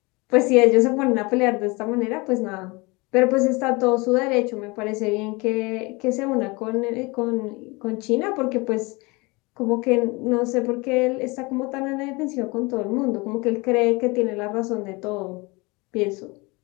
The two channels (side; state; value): right; quieter; 25.9 dB